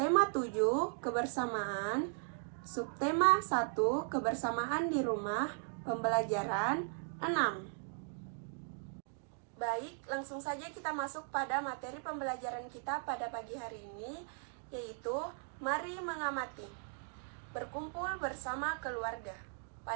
7, kebersamaan, subtema 1, kebersamaan di rumah, pembelajaran 6. Baik, langsung saja kita masuk pada materi pembelajaran kita pada pagi hari ini, yaitu mari mengamati. Berkumpul bersama keluarga.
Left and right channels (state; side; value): silent; left; 53 dB below the other